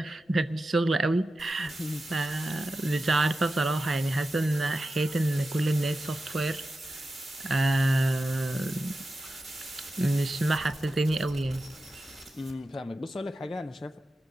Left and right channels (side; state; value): both; normal; correlation 0.92